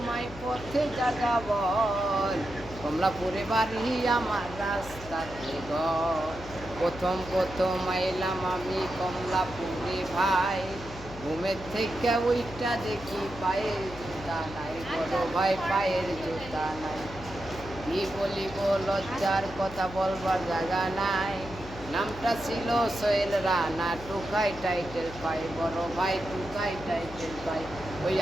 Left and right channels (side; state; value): left; noise; hum, 14 dB below the sound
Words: পথে জাগা বল। কমলাপুরে বাড়ি আমার, রাস্তাতে ঘর। প্রথম প্রথম আইলাম আমি কমলাপুরে ভাই। ঘুমের থেকে ওইটা দেখি পায়ের জুতা নাই, বড় ভাই পায়ের জুতা নাই। কি বলিব, লজ্জার কথা বলবার জায়গা নাই। নামটা ছিল সোহেল রানা, টুকাই টাইটেল পাই, বড় ভাই টুকাই টাইটেল পাই। ওই